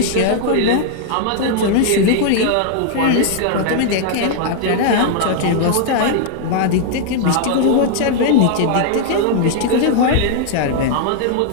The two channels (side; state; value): both; different; correlation -0.01